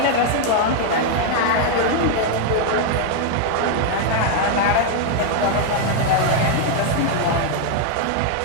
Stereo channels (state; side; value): different; both; correlation 0.00